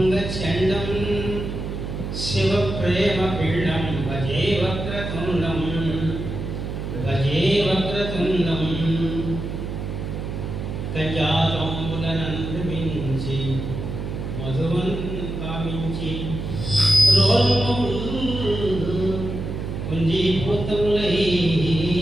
शिवप्रेमपीडं भजे वक्रतुण्डं कजातम्बुलनन्दमिंचि मधुवन् कामिंचि कुंजीभूतमुलै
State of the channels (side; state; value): right; noise; hum, 5 dB below the sound